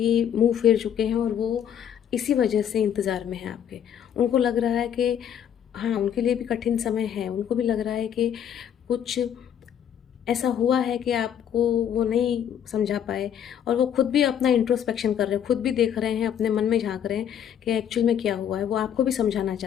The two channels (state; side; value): quieter; right; 9.2 dB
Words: मुँह फेर चुके हैं, और वो इसी वजह से इंतज़ार में हैं आपके। उनको लग रहा है कि हाँ, उनके लिए भी कठिन समय है। उनको भी लग रहा है कि कुछ ऐसा हुआ है कि आपको वो नहीं समझा पाए, और वो खुद भी अपना इंट्रोस्पेक्शन कर रहे हैं, खुद भी देख रहे हैं, अपने मन में झाँक रहे हैं कि एक्चुअल में क्या हुआ है। वो आपको भी समझाना